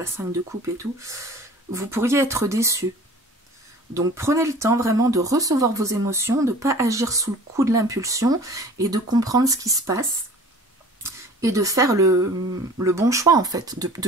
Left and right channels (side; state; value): both; normal; correlation 0.45